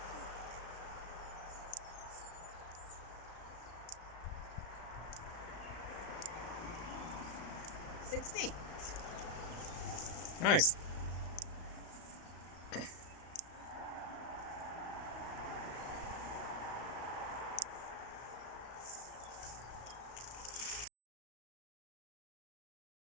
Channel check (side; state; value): right; late; 35 ms